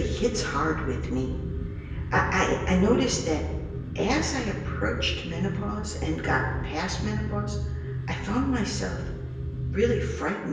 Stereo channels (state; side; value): identical; both; correlation 1.00